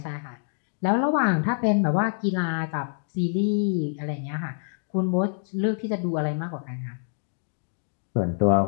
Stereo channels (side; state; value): right; silent; digital silence